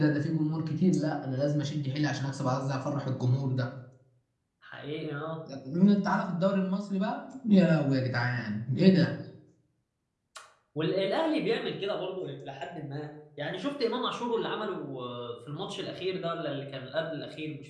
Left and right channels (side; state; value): both; identical; correlation 1.00